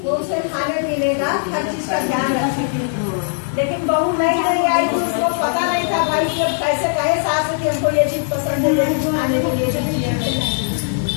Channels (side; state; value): right; silent; digital silence